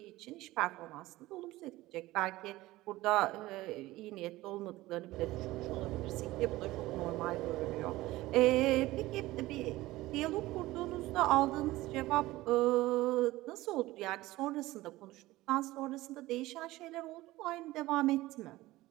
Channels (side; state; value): left; quieter; 17.9 dB